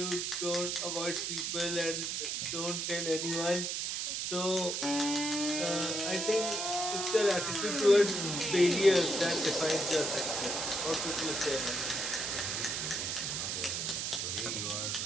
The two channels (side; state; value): right; noise; hiss, 1 dB below the sound